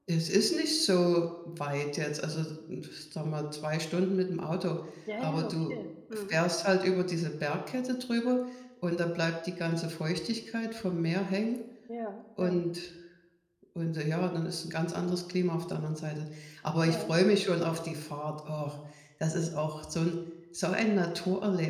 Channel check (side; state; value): both; identical; correlation 1.00